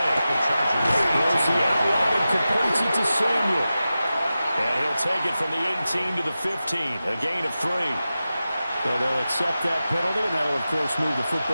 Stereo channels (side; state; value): both; inverted; correlation -0.93